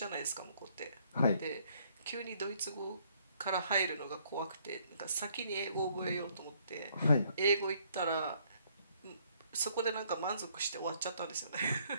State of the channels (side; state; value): both; inverted; correlation -0.66